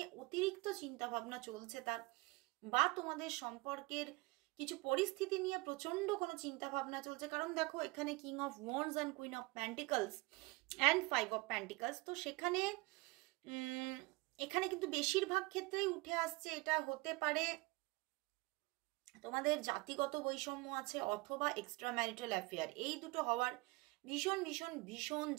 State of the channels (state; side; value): quieter; left; 24.3 dB